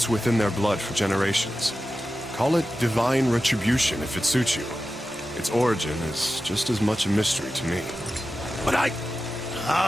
within their blood for generations. Call it divine retribution if it suits you. Its origin is just as much a mystery to me. But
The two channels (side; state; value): both; normal; correlation 0.93